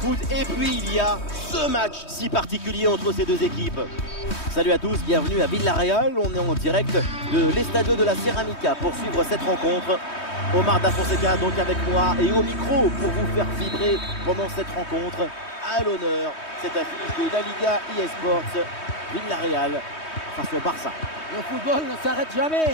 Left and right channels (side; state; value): right; late; 3.2 ms